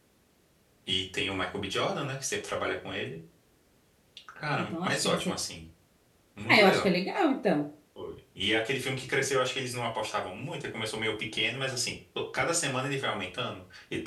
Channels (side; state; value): both; identical; correlation 1.00